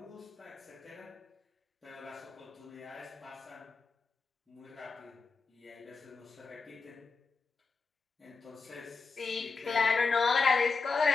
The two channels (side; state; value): right; quieter; 4.5 dB